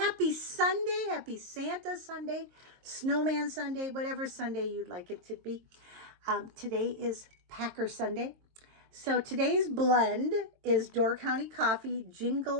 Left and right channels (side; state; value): left; late; 22 ms